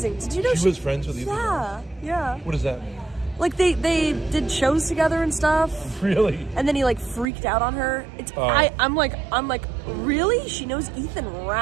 Did you know she was friends with Ethan Ralph? Yeah. What does that mean? Like they did shows together and stuff. Really? And then he like freaked out on her. I'm like, really? She knows Ethan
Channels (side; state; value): left; drops out; at 7.2 s